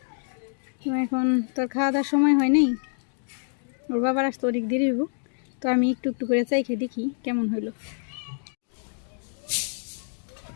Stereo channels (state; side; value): silent; right; digital silence